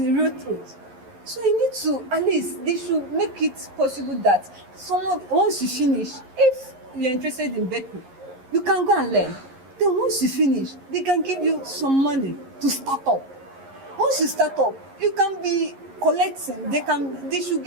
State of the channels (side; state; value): left; late; 11 ms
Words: real truth. So you need to, at least they should make it possible that someone, once you finish, if you're interested in bakery, you can go and learn. Then once you finish, they can give you some money to start up. Once you start up, you can be collecting. They should